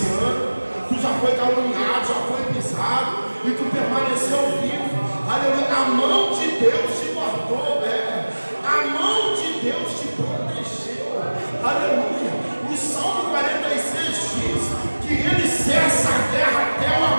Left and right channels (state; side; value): inverted; both; correlation -1.00